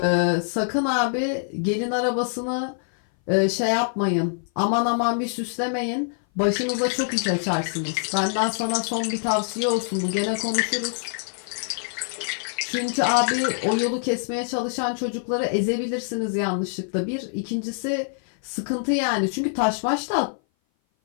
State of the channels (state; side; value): silent; right; 57 dB below the other